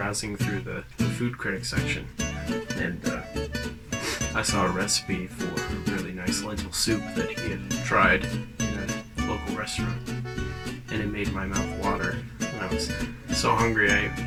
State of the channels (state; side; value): identical; both; correlation 1.00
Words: through the food critic section, and I saw a recipe for a really nice lentil soup that he had tried in a local restaurant, and it made my mouth water. And I was so hungry